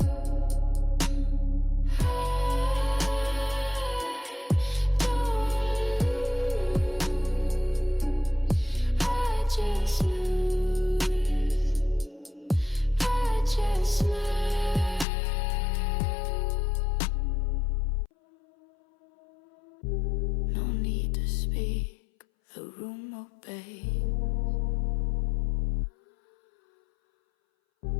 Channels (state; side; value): drops out; right; at 15.1 s